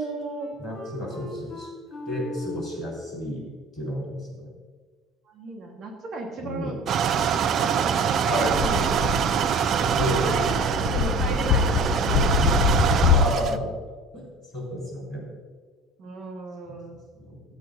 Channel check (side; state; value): both; normal; correlation 0.40